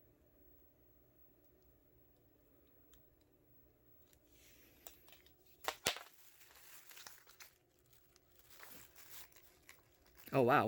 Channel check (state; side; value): identical; both; correlation 1.00